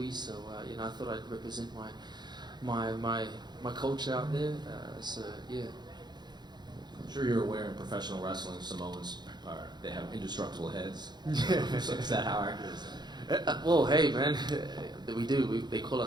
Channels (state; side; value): late; left; 0.21 ms